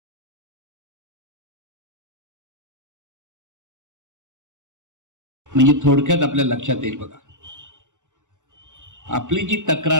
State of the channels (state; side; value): late; left; 0.85 ms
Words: म्हणजे थोडक्यात आपल्या लक्षात येईल बघा. आपली जी